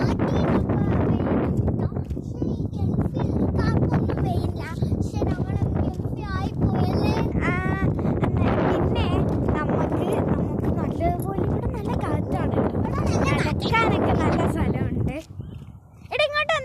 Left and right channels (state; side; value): identical; both; correlation 1.00